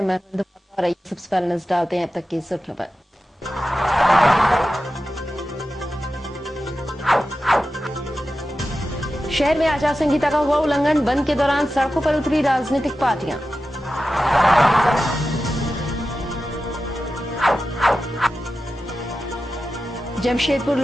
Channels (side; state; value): both; normal; correlation 0.93